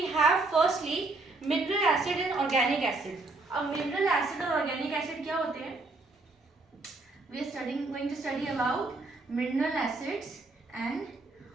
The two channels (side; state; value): left; quieter; 3.3 dB